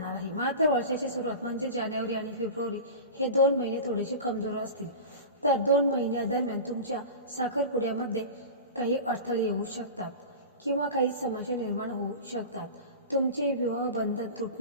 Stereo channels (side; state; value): both; inverted; correlation -0.31